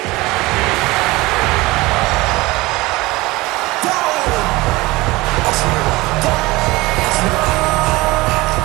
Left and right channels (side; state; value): left; quieter; 21.1 dB